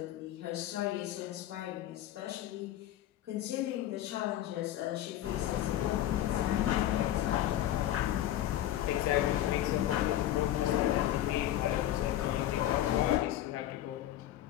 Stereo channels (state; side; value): quieter; right; 13.0 dB